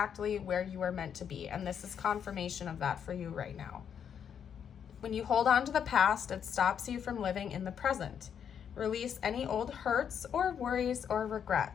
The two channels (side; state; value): right; quieter; 8.1 dB